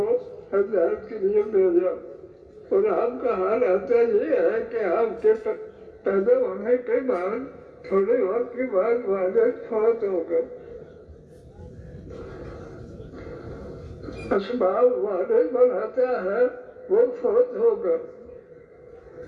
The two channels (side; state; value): both; identical; correlation 1.00